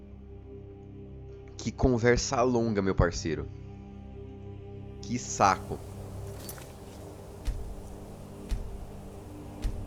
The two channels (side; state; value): both; identical; correlation 1.00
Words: Que conversa longa, meu parceiro. Que saco.